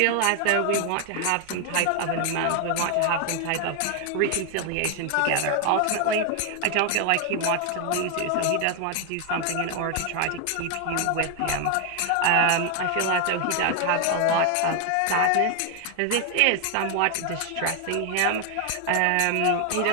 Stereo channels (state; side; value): different; both; correlation 0.00